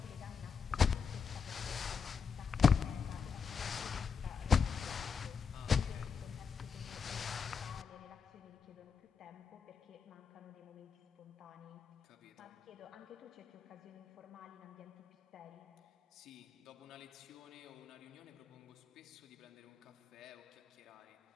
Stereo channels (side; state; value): right; quieter; 6.2 dB